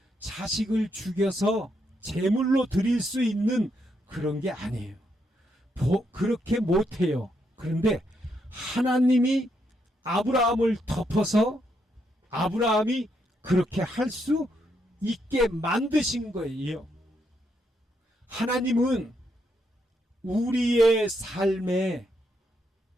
자식을 죽여서 제물로 드릴 수 있는 그런 게 아니에요. 그렇게 못해요. 그런데 하나님이 아브라함을 덮어서 아브라함이 그렇게 할 수 있게 만드신 거예요. 하나님은 우리의 삶에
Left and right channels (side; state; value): both; normal; correlation 0.78